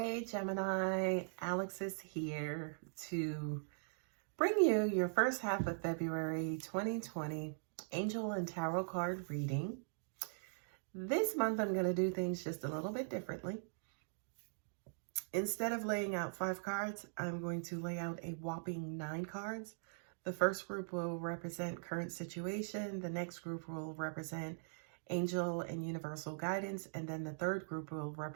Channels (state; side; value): silent; left; digital silence